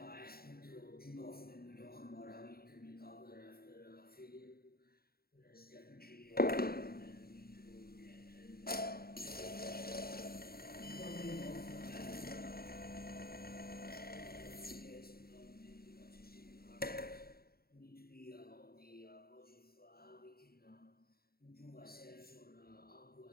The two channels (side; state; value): right; late; 0.44 ms